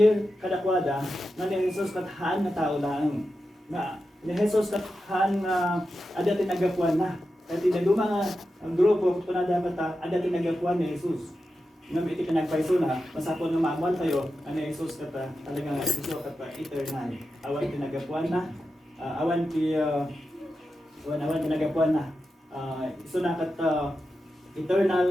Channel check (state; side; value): normal; both; correlation 0.90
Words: kadakwada nga ni Jesus kat haan nga tao lang. Nga ni Jesus kat haan nga ada tinagapuan na. Kaya tinaduma nga ang grupo kung na dapat ada tinagapuan ni Jesus. Nga iti pinagpaiso na, masapol nga maamuan tayo ani Jesus kat talagang Jesus kat eternal. Awan tinagapuan na. Awan tinagapuan na. Iso na kat